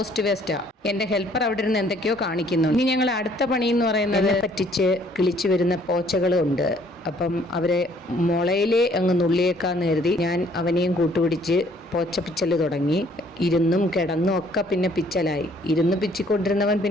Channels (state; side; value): normal; both; correlation 0.61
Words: വേസ്റ്റാണ്. എൻ്റെ ഹെൽപ്പർ അവിടെ ഇരുന്ന് എന്തൊക്കെയോ കാണിക്കുന്നുണ്ട്. ഇനി ഞങ്ങൾ അടുത്ത പണി എന്ന് പറയുന്നത് പറ്റിച്ച് കിളിച്ചു വരുന്ന പോച്ചകളുണ്ട്. അപ്പം അവരെ മുളയിലേ അങ്ങ് നുള്ളിയേക്കാന്ന് കരുതി ഞാൻ അവനെയും കൂട്ടുപിടിച്ച് പോച്ച പിച്ചൽ തുടങ്ങി. ഇരുന്നും കിടന്നും ഒക്കെ പിന്നെ പിച്ചലായി. ഇരുന്ന് പിച്ചിക്കൊണ്ടിരുന്നവൻ